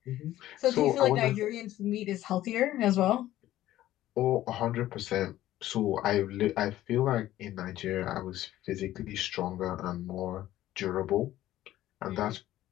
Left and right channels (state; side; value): quieter; right; 14.2 dB